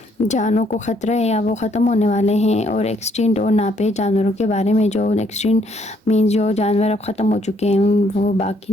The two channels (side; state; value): both; normal; correlation 0.68